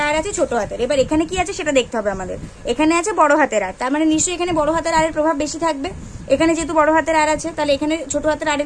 আর আছে ছোট হাতের, এবার এখানে কি আছে সেটা দেখতে হবে আমাদের, এখানে আছে বড় হাতের আর, তার মানে নিশ্চয়ই এখানে বড় হাতের আরের প্রভাব বেশি থাকবে, এখানে যেহেতু বড় হাতের আর আছে তাহলে এখানে ছোট হাতের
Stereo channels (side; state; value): both; identical; correlation 1.00